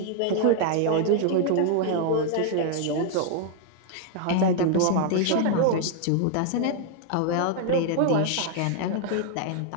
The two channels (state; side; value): different; both; correlation 0.00